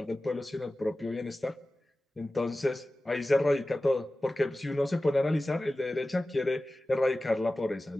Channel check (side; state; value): both; normal; correlation 0.96